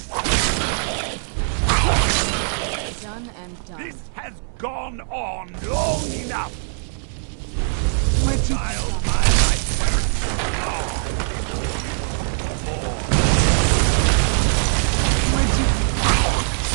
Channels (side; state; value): left; silent; 64 dB below the other